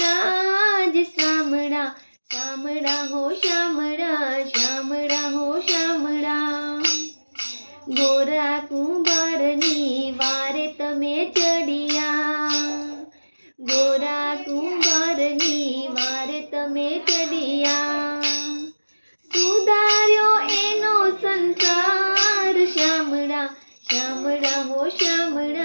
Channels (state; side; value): inverted; both; correlation -1.00